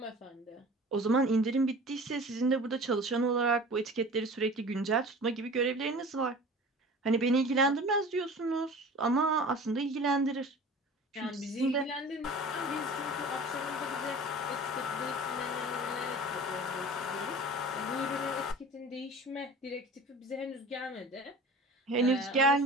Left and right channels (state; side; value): normal; both; correlation 0.40